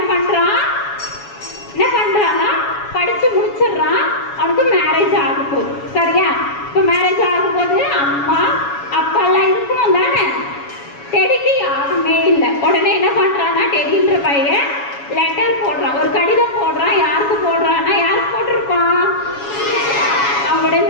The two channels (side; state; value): right; late; 7.1 ms